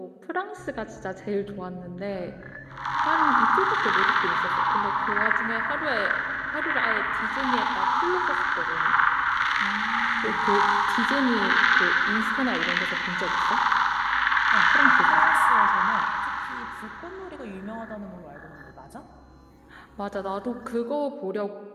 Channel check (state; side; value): identical; both; correlation 1.00